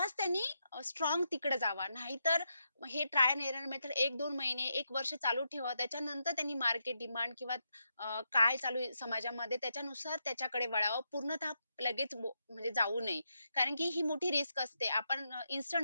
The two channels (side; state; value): both; inverted; correlation -0.83